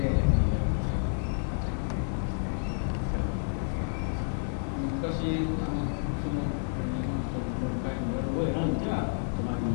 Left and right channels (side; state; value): right; silent; 58 dB below the other